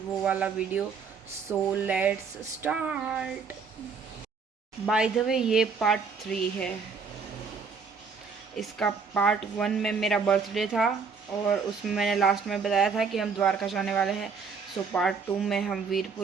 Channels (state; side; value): quieter; left; 5.4 dB